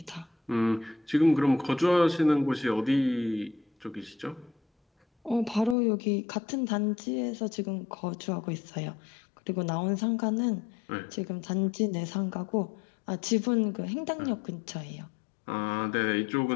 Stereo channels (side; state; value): right; drops out; at 5.8 s